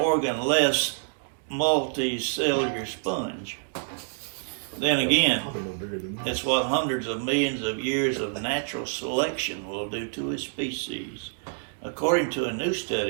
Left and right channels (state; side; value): silent; left; digital silence